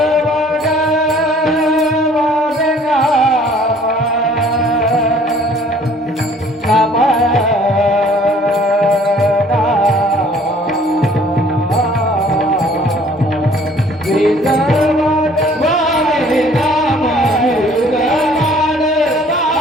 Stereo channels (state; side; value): normal; both; correlation 0.56